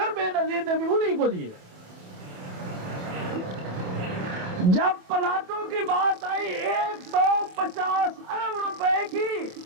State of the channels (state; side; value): late; left; 27 ms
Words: بے نظیر نے بھی انہی کو دیے. جب پلاٹوں کی بات آئی 150 ارب روپے کی،